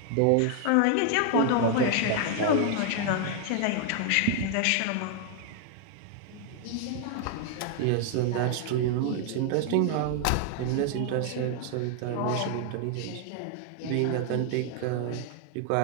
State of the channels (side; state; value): both; different; correlation 0.00